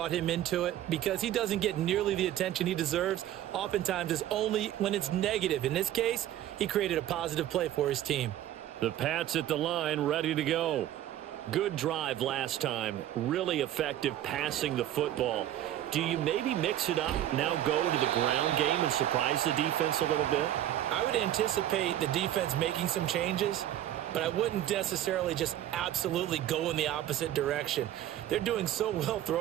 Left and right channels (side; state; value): left; quieter; 12.4 dB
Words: him into it because he doesn't get nearly the attention he deserves. Oftentimes it's only when it's negative. In this case, he created a positive play for his team. The Pats at the line, ready to go. Good drive last time. Really effective passing the football. Do you maybe mix it up, now go to the ground game and surprise the defense a little bit? I would anticipate the defense making some changes, but I wouldn't necessarily just absolutely go in the opposite direction. They're doing so well